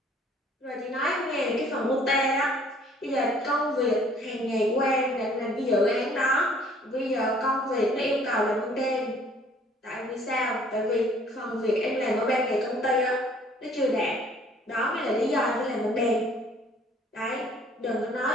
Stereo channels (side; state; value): both; normal; correlation 0.57